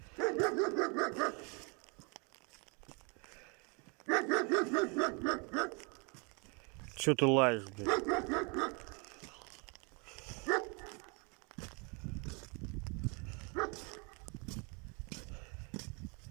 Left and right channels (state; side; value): quieter; left; 32.7 dB